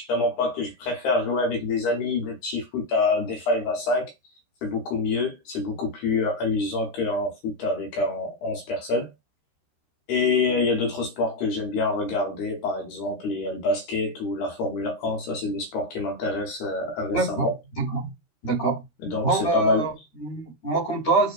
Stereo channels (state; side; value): late; right; 13 ms